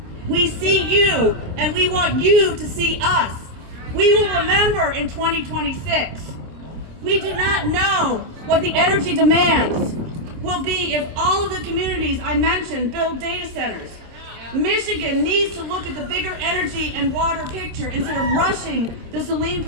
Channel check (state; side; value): late; left; 27 ms